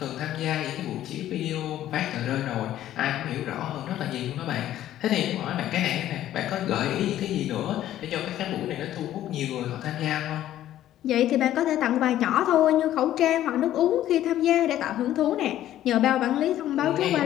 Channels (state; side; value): quieter; right; 12.7 dB